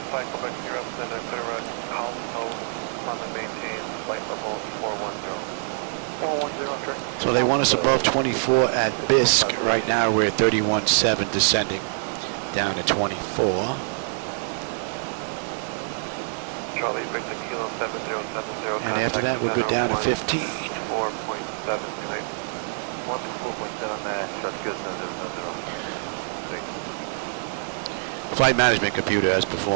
So they want us above 24 at Bisque. Right now we're at 31.7 descending down to 24. And after that we'll go down to 15. Flight management computer has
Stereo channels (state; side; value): silent; left; digital silence